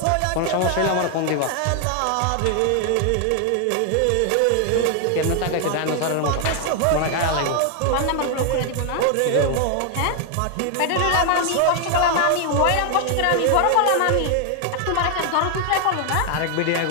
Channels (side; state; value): both; different; correlation 0.00